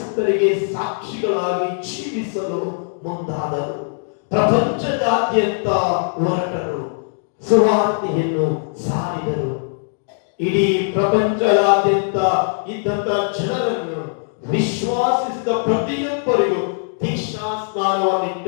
ಸಾಕ್ಷಿಗಳಾಗಿ ಜೀವಿಸಲು ಮುಂದಾದರು. ಪ್ರಪಂಚದಾದ್ಯಂತ ಹೊರಟರು, ಸುವಾರ್ತೆಯನ್ನು ಸಾರಿದರು. ಇಡೀ ಪ್ರಪಂಚದಾದ್ಯಂತ ಇದ್ದಂತ ಜನರನ್ನು ವಿಶ್ವಾಸಿಸಿದ ಪ್ರತಿಯೊಬ್ಬರಿಗೂ ದೀಕ್ಷಾ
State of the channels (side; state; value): right; silent; digital silence